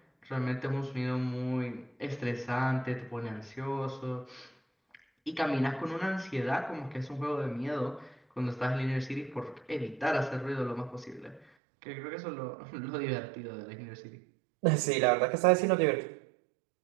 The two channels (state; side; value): drops out; left; at 11.5 s